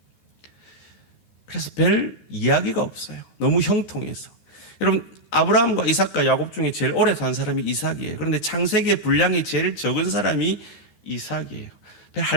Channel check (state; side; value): late; right; 13 ms